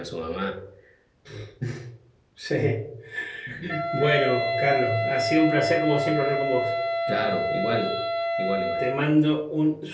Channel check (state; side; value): identical; both; correlation 1.00